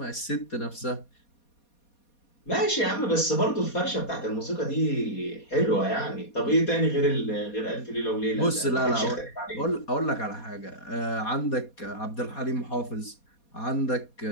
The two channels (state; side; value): late; right; 4.2 ms